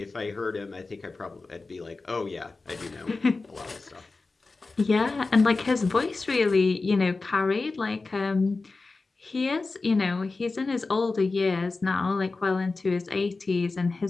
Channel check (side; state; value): right; quieter; 3.7 dB